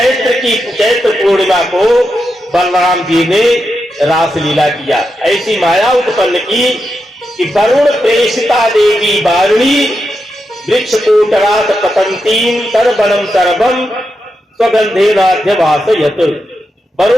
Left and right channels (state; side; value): normal; both; correlation 0.87